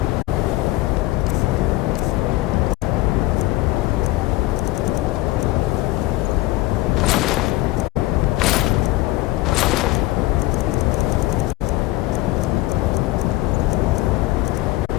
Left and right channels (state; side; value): quieter; right; 18.5 dB